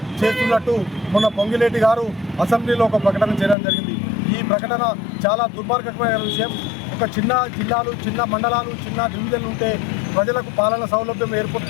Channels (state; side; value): drops out; right; at 3.6 s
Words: చేస్తున్నట్టు మొన్న పొంగిలేటి గారు అసెంబ్లీలో ఒక ప్రకటన చేయడం జరిగింది. ఈ ప్రకటన చాలా దుర్మార్గమైన విషయం. ఒక చిన్న జిల్లాలు, చిన్న మండలాలు, చిన్న డివిజన్లు ఉంటే ప్రజలకు పాలన సౌలభ్యం